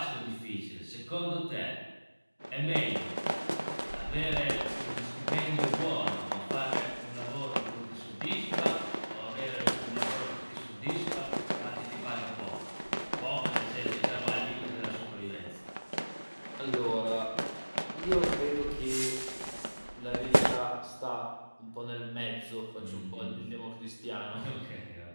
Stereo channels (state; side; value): inverted; both; correlation -1.00